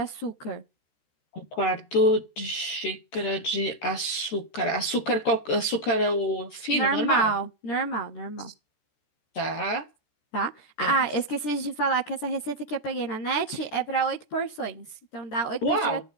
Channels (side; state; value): right; late; 14 ms